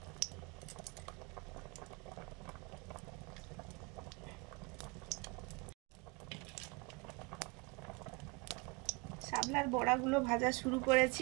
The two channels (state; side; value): quieter; left; 28.3 dB